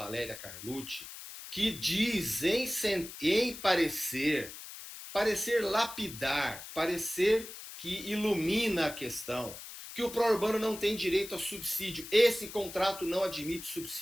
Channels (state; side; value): noise; left; hiss, 12 dB below the sound